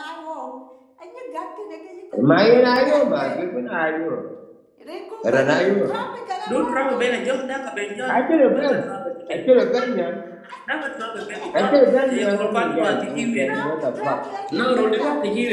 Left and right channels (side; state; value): both; identical; correlation 1.00